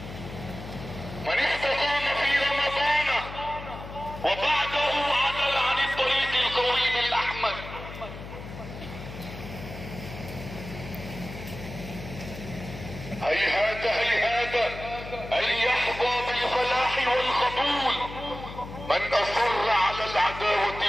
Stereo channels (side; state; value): left; noise; hum, 12 dB below the sound